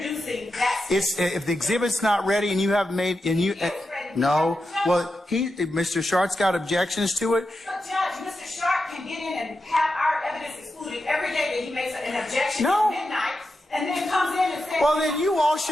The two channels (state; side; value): normal; both; correlation 0.89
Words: that. If the exhibit's not ready and you haven't made, no, well, Mr. Shart's got objections to it. But Judge, Mr. Sharp can get in and have our evidence excluded every day that he makes an objection at midnight, and then comes in and says. Well, then you